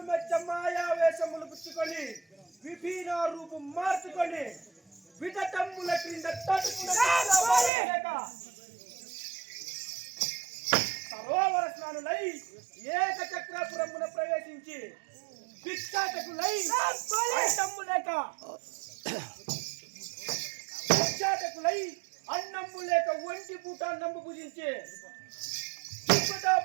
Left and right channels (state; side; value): drops out; left; at 7.7 s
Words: మెచ్చ మాయావేశములు పుచ్చుకొని విభిన్న రూపం మార్చుకొని విధతమ్ముల క్రింద సరోవర స్నానులై ఏకచక్రపురమున ప్రవేశించి భిక్షాటకులై అన్నమ్ము లేక ఒంటి పూట నమ్ము పూజించే